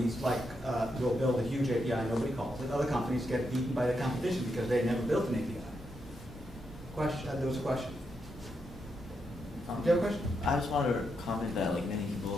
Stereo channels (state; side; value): normal; both; correlation 0.82